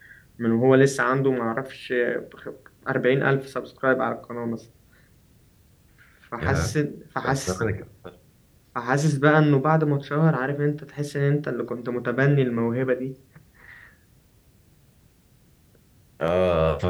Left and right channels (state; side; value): identical; both; correlation 1.00